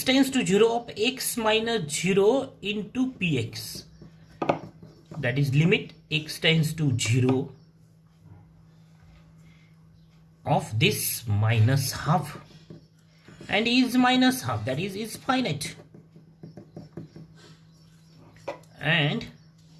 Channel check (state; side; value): identical; both; correlation 1.00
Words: tends to 0 of x minus 0 into px. That is limit x tends to 0 of this minus half, and is minus half, that is finite. And